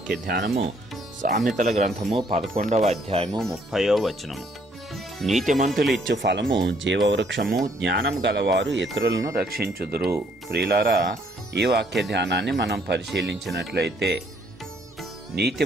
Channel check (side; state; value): both; normal; correlation 0.66